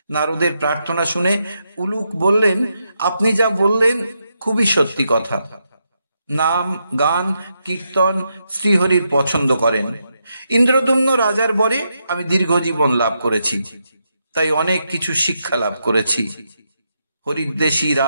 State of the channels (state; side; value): inverted; both; correlation -0.82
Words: নারদের প্রার্থনা শুনে উলুক বললেন, আপনি যা বললেন খুবই সত্যি কথা। নাম, গান, কীর্তন শ্রীহরির পছন্দ করেন। ইন্দ্রদম্ন রাজার বরে আমি দীর্ঘজীবন লাভ করেছি, তাই অনেক কিছু শিক্ষা লাভ করেছি। হরিদ্বেষী